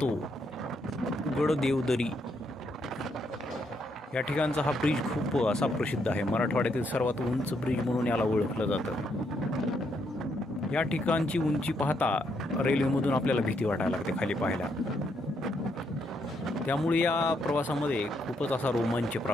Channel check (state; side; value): normal; both; correlation 0.76